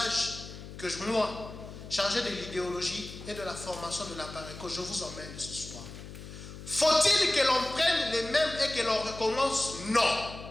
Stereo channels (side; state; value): left; noise; hum, 13 dB below the sound